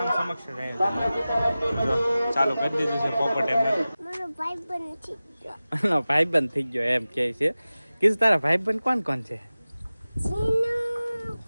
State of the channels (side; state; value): both; inverted; correlation -0.96